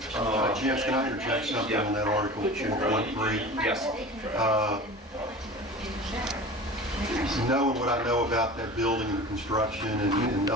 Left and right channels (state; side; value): normal; both; correlation 0.36